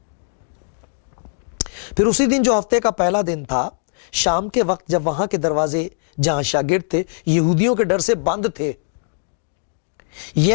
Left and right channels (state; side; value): silent; right; digital silence